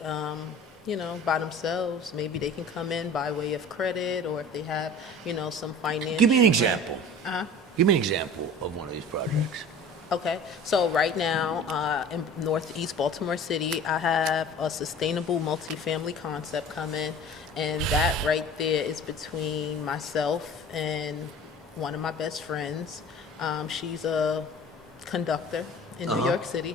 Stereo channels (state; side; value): normal; both; correlation 0.42